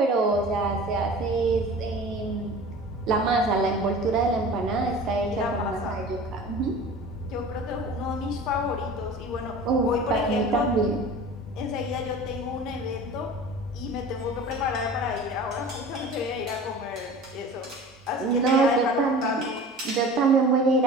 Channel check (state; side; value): normal; both; correlation 0.39